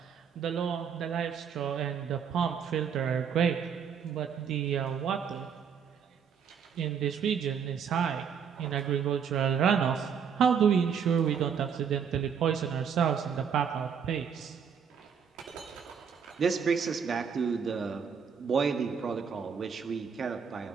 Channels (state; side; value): quieter; left; 7.1 dB